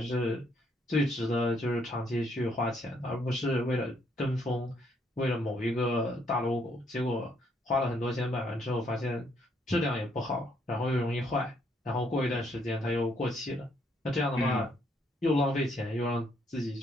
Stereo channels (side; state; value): both; normal; correlation 0.71